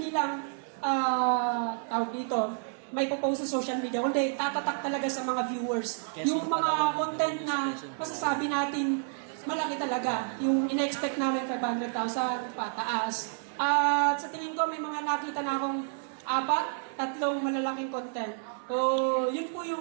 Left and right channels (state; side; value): silent; left; 58 dB below the other